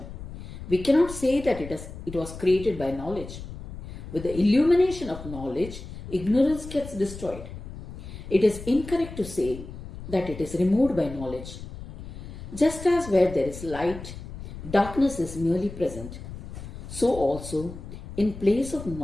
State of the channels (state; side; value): noise; left; rumble, 12 dB below the sound